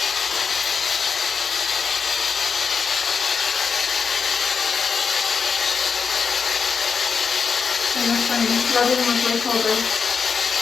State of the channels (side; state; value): right; quieter; 5.7 dB